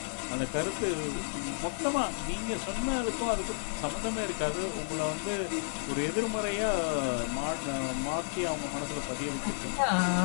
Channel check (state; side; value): silent; right; digital silence